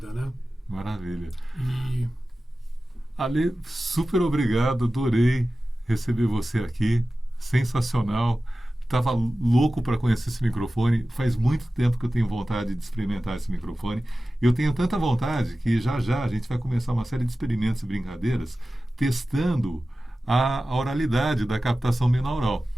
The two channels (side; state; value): both; normal; correlation 0.95